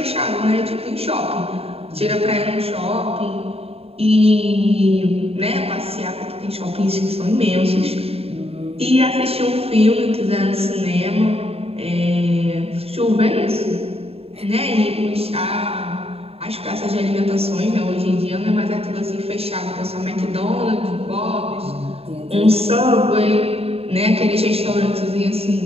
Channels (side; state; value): left; late; 0.29 ms